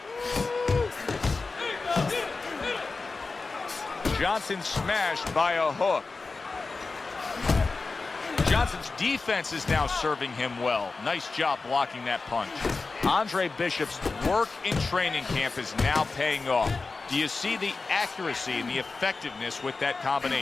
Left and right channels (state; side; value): quieter; right; 4.0 dB